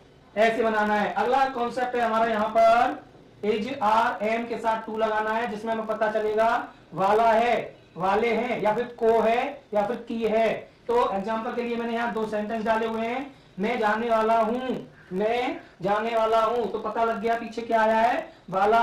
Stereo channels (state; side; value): identical; both; correlation 1.00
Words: ऐसे बनाना है। अगला कॉन्सेप्ट है हमारा यहाँ पर इज आर एम के साथ टू लगाना है, जिसमें हमें पता चलेगा वाला है, वाले हैं, या फिर को है, या फिर की है। तो एग्जांपल के लिए मैंने यहाँ दो सेंटेंस डाले हुए हैं। मैं जाने वाला हूं, मैं जाने वाला हूं, तो पता लग गया पीछे क्या आया है, वाला